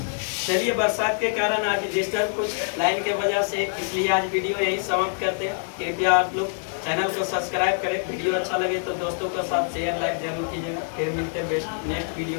चलिए, बरसात के कारण आज डिस्टर्ब कुछ लाइन के वजह से, इसलिए आज वीडियो यही समाप्त करते हैं। कृपया आप लोग चैनल को सब्सक्राइब करें, वीडियो अच्छा लगे तो दोस्तों के साथ शेयर लाइक जरूर कीजिएगा। फिर मिलते हैं बेस्ट नेक्स्ट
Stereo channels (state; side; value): silent; right; digital silence